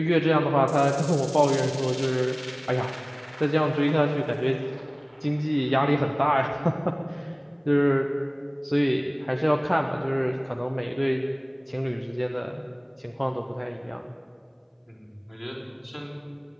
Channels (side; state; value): both; identical; correlation 1.00